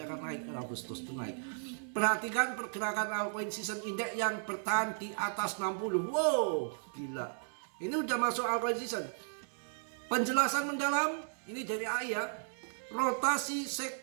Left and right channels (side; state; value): left; silent; digital silence